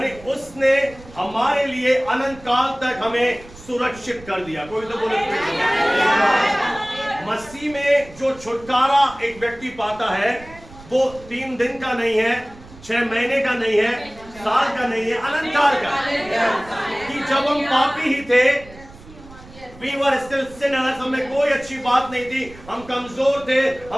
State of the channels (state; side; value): noise; right; rumble, 20 dB below the sound